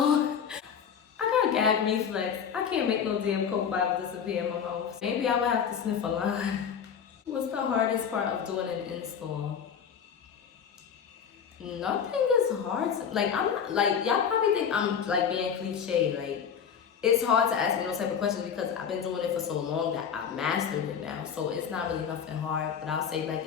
I got gag reflex. I can't make no damn Coke bottle disappear in my mouth. Maybe I would have to sniff a line. What's the hardest part of doing an install? Nothing is hard. Like, I'm not, like, y'all probably think I'm like being cliche. Like, it's hard to ask me those type of questions because I've been doing it for so long that I mastered it now. So it's not really nothing hard. But I'll say, like,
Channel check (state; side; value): quieter; right; 7.4 dB